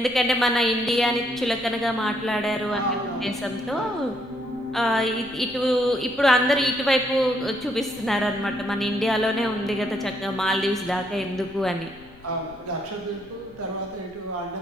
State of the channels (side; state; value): left; noise; rumble, 26 dB below the sound